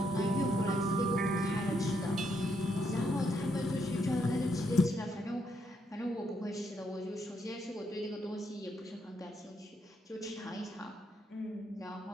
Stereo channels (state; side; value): normal; both; correlation 0.76